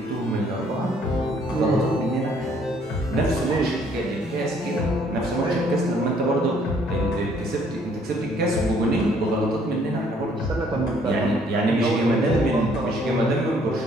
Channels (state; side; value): normal; both; correlation 0.63